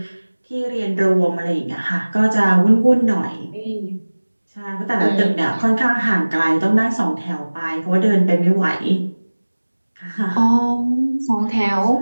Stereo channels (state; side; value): inverted; both; correlation -1.00